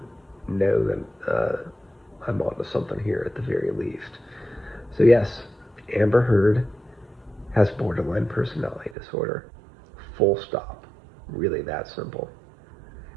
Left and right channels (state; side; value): drops out; left; at 9.0 s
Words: know that I'm onto something here at the very least. So yes, Amber Heard has borderline personality disorder. Full stop. Really that simple.